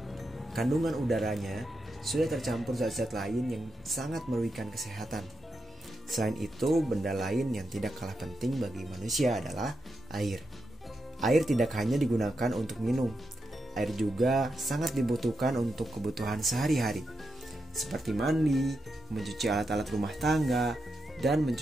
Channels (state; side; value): normal; both; correlation 0.86